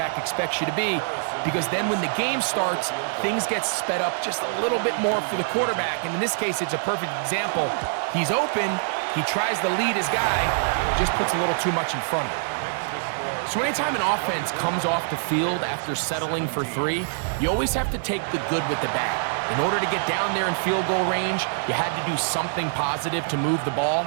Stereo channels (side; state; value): left; silent; digital silence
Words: expects you to be, because then when the game starts, things get sped up just a little bit more for the quarterback. And in this case, it's a perfect example. He's open, he tries to lead his guy, just puts a little too much in front of him. So anytime an offense comes off the field after settling for 3, you always have to take the good with the bad. In order to get down there in field goal range, you had to do something positive to move the ball.